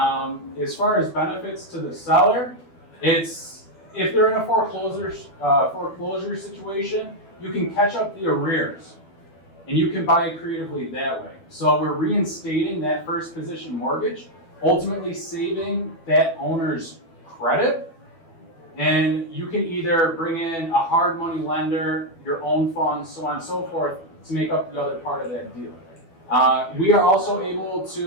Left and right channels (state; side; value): late; right; 12 ms